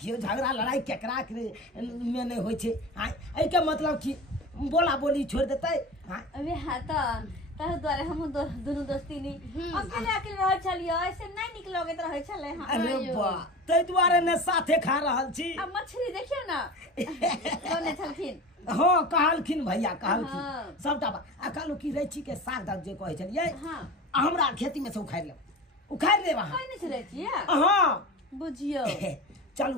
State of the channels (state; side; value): normal; both; correlation 0.32